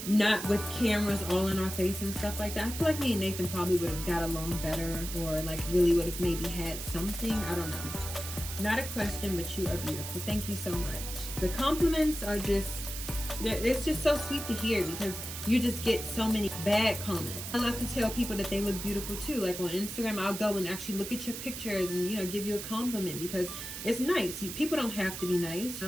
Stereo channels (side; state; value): right; noise; hiss, 8 dB below the sound